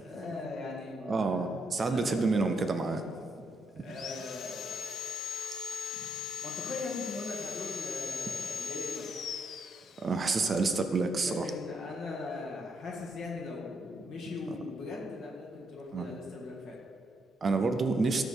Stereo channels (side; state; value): both; normal; correlation 0.77